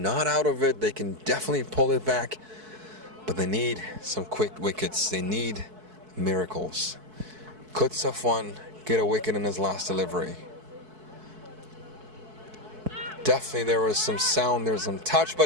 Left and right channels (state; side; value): late; left; 4.6 ms